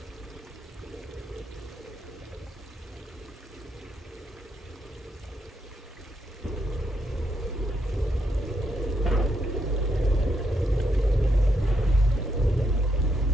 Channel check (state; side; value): normal; both; correlation 0.79